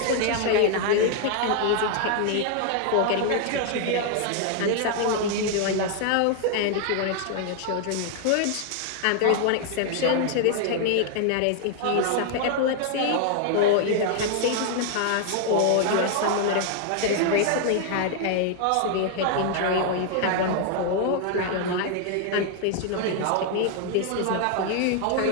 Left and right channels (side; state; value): both; different; correlation 0.00